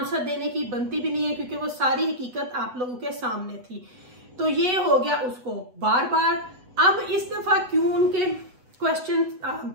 देने की बनती भी नहीं है, क्योंकि वो सारी हकीकत आप लोगों के सामने थी। तो ये हो गया उसको बार बार। अब इस दफा क्यों उनके क्वेश्चन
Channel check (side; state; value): left; late; 8.2 ms